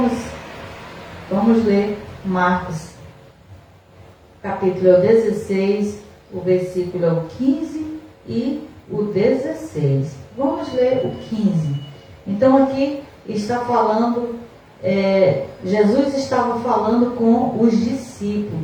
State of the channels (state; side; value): identical; both; correlation 1.00